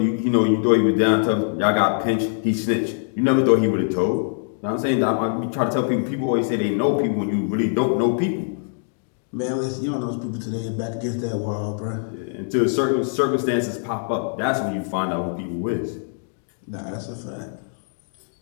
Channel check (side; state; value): right; silent; digital silence